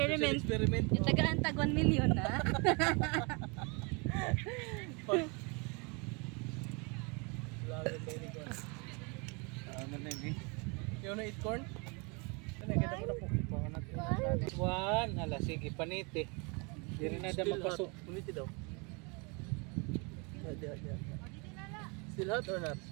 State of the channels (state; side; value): quieter; left; 31.3 dB